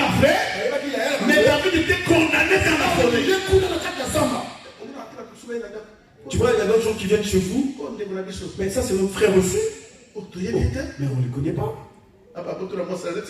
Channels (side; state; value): both; identical; correlation 1.00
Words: frère, mais David était condamné dans la forêt. Tu vois, il y a d'autres gens qui viennent chez vous, mais ça c'est notre frère aussi. Mais on ne les connaît pas.